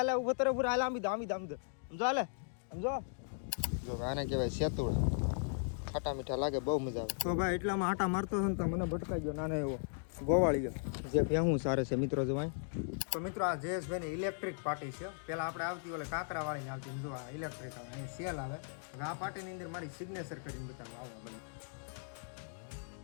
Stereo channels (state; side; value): silent; right; digital silence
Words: ઉભો તો પૂરા હાલે આમી દો સમજો હાલે સમજો જો આને કહેવાય સેતુડા ખાટા મીઠા લાગે બહુ મજા આવે. તો ભાઈ એટલામાં આટા મારતો હતો ને તો મને ભટકાઈ ગયો નાનો એવો ગોવાળી ગયો જે ભેહું સારે છે મિત્રો જોવાય. તો મિત્રો આ જયેશભાઈની ઇલેક્ટ્રિક પાર્ટી છે. પહેલાં આપણે આવતી ઓલે કાંકરાવાળીને આવતી જો આ ઇલેક્ટ્રિક આવે અહીં સેલ આવે. હવે આ પાર્ટીની અંદર મારી સિગ્નેચર કરીને બતાવો આવો બને.